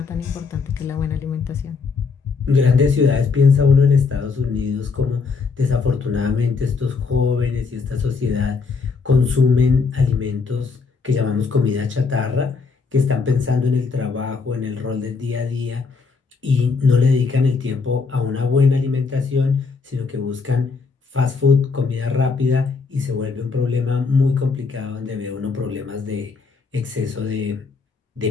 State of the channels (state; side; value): quieter; right; 4.8 dB